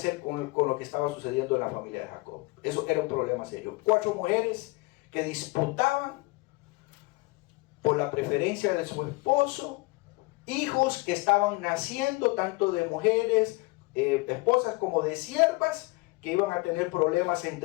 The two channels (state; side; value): quieter; right; 23.9 dB